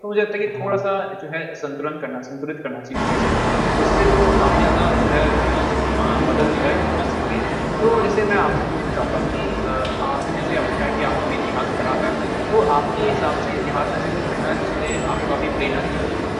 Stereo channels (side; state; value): both; identical; correlation 1.00